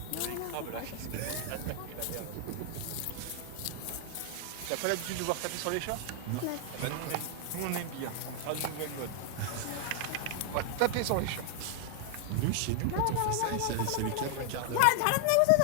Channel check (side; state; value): both; different; correlation 0.00